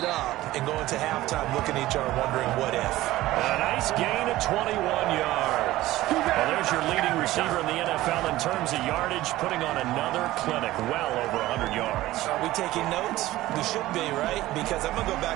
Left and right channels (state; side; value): quieter; left; 16.4 dB